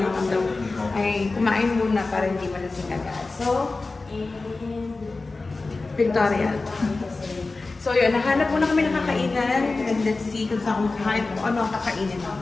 daw ay kumain muna para hindi malasing agad. So, Victoria. So yun, nahanap muna kami ng kakainan. And let's see kung saan kung ano ang kakainin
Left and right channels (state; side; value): quieter; right; 3.6 dB